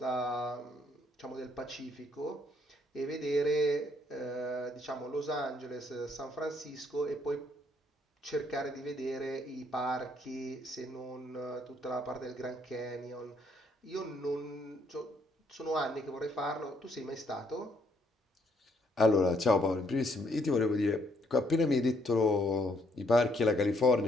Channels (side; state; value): both; normal; correlation 0.70